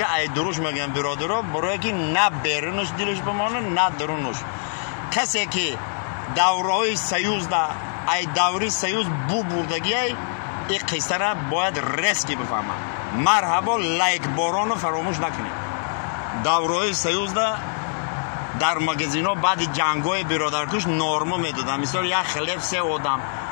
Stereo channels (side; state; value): right; silent; digital silence